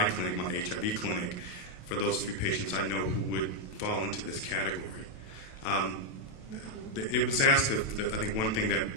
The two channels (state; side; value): late; right; 28 ms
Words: clinic, my HIV clinic, for those few patients I know who would fall into this category. It was asked, I think one thing that